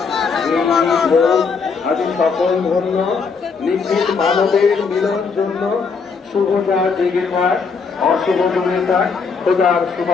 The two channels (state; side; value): quieter; right; 5.2 dB